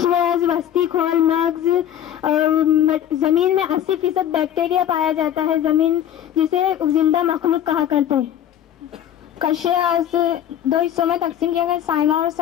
وسطی کھول، مغز. زمین میں 80% بیکٹیریا پایا جاتا ہے، زمین جسے زندہ مخلوق کہا کرتے ہیں. قشرز 2 حصوں میں تقسیم کیا گیا، سائمہ اور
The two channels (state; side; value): quieter; right; 10.5 dB